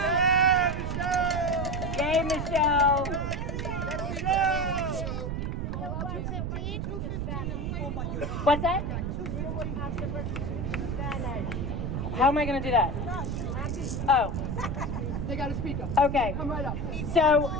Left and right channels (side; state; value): right; noise; rumble, 2 dB below the sound